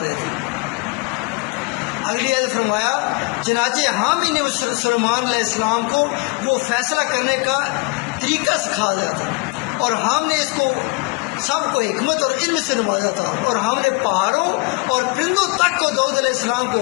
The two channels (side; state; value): right; quieter; 28.6 dB